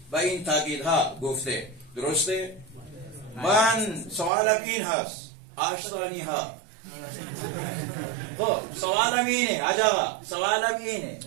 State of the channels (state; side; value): drops out; left; at 4.3 s